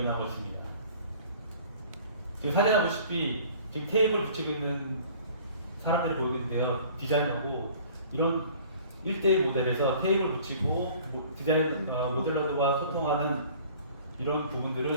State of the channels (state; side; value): inverted; both; correlation -0.50